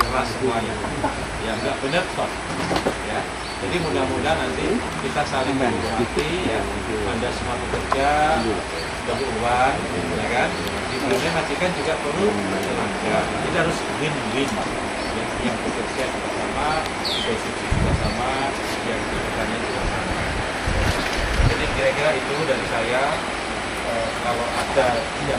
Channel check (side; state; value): both; identical; correlation 1.00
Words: semuanya. Ya nggak benar stop. Ya. Jadi mudah-mudahan nanti kita saling menghormati, ya. Anda semua bekerja, berhubungan, ya kan? Di Brunei majikan juga perlu tenaga. Jadi harus win-win. Yang bekerja juga sama, posisi juga sama, yang bekerjanya juga sama. Jadi kira-kira itu dari saya. Kalau ada